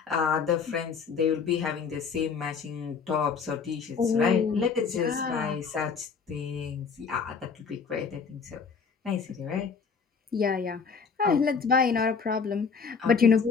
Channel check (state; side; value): quieter; right; 5.6 dB